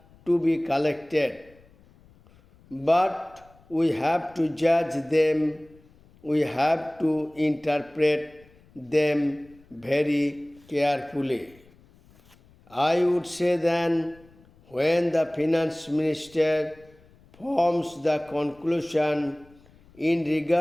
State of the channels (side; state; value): left; noise; rumble, 28 dB below the sound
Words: to be collected, but we have to judge them, we have to interpret them very carefully. I would say then, when the finance minister forms the conclusion in